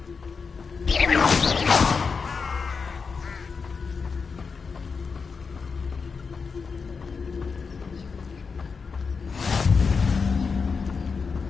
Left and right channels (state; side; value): quieter; right; 5.2 dB